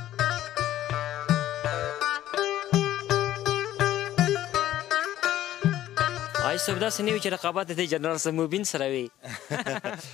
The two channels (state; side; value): quieter; right; 13.1 dB